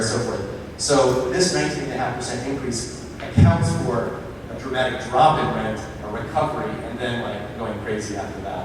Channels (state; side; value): identical; both; correlation 1.00